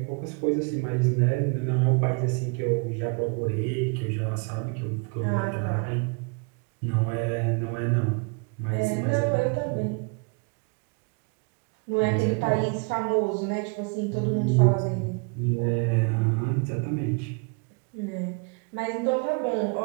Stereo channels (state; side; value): quieter; left; 33.7 dB